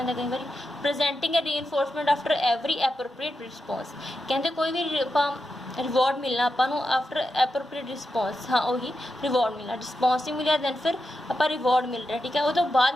है कई बार। प्रेजेंटिंग ए reinforcement after every appropriate response. कहते कोई भी रिवॉर्ड मिलना आपको आफ्टर एप्रोप्रिएट रिस्पॉन्स, हाँ वही रिवॉर्ड मिलना, रिस्पॉन्स नहीं मिला दैन फिर आप रिवॉर्ड मिल रहा है, ठीक है, वो तो बाद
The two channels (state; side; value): normal; both; correlation 0.88